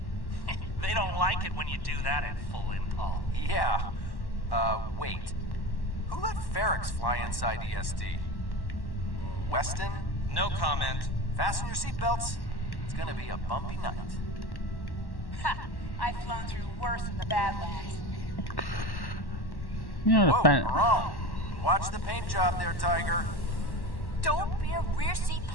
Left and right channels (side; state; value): right; late; 1.1 ms